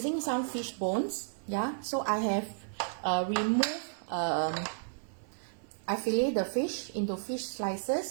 some fish bones. Yeah, so I have removed. I fillet the fish into fish slices,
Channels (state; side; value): silent; left; 56 dB below the other